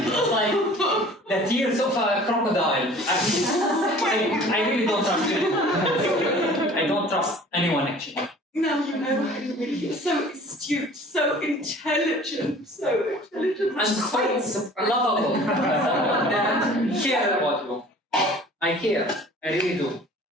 it's like the tears of a crocodile. I really don't trust you. I don't trust anyone actually. No, Henry, you're so astute, so intelligent, I'm so lovable. And care about you. I care. I really do.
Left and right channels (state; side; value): normal; both; correlation 0.47